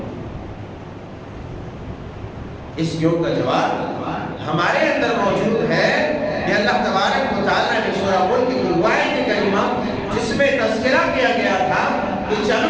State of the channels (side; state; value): both; identical; correlation 1.00